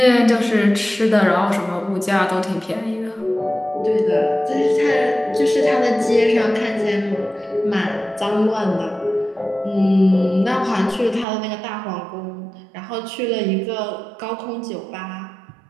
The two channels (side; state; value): left; drops out; at 11.2 s